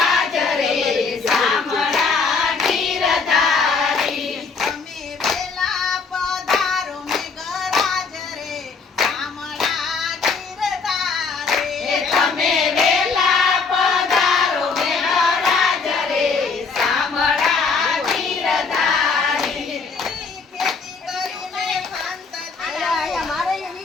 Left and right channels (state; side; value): quieter; right; 4.9 dB